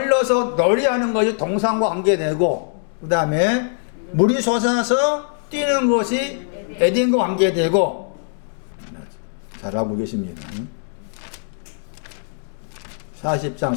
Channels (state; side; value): silent; right; 61 dB below the other